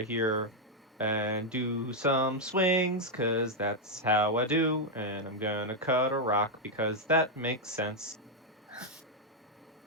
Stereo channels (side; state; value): both; normal; correlation 0.00